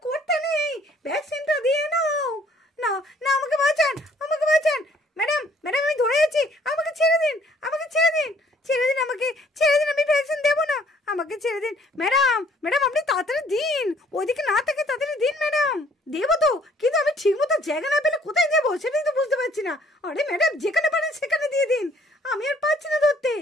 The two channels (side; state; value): both; normal; correlation 0.61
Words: করতে নেই, ভ্যাকসিনটা দিয়ে নাও। না না আমাকে বাঁচান, আমাকে বাঁচান। ম্যাডাম ম্যাডাম আমি ধরে আছি, আমাকে ছেড়ে দিন, আমাকে ছেড়ে দিন, ছেড়ে দিন, আমাকে ছেড়ে দিন, আমি ভ্যাকসিন দেবো না, আমাকে ছেড়ে দিন। ম্যাডাম ম্যাডাম আপনি তাড়াতাড়ি দিন, ওইদিকে না থেকে তাড়াতাড়ি দিন ম্যাডাম। দেবো তো, কিন্তু আমি ঠিক মতো জায়গা না পেলে কোথায় দেবো সেটাই তো বুঝতে পারছি না। আরে ম্যাডাম যেখানে পারেন সেখানে দিয়ে দিন, আমি আর পাচ্ছি না ধরতে।